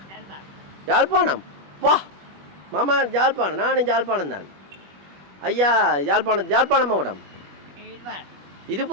யாழ்ப்பாணம். வா மாமா யாழ்ப்பாணம். நானும் யாழ்ப்பாணம் தான் ஐயா. யாழ்ப்பாணம் மாவட்டம்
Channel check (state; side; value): late; left; 21 ms